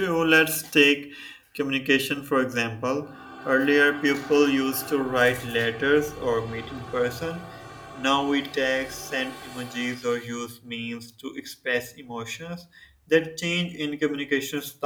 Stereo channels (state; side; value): identical; both; correlation 1.00